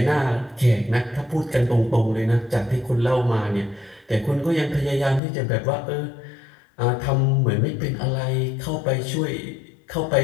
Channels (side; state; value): right; drops out; at 5.2 s